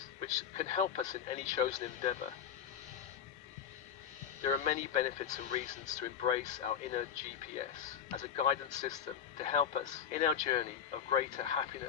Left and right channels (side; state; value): right; quieter; 8.1 dB